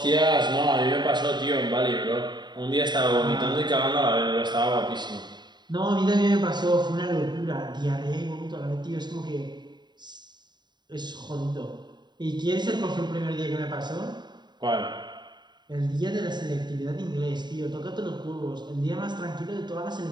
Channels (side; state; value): left; late; 0.21 ms